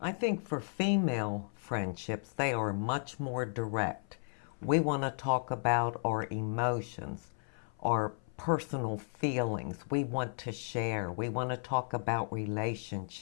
I think for female friendships, they are much more direct. We want to talk about our emotions, our personal feelings. We want to share. We want to talk about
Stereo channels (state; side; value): silent; right; 55 dB below the other